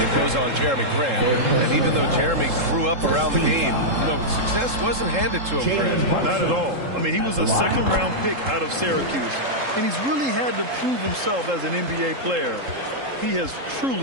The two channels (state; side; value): late; left; 3.7 ms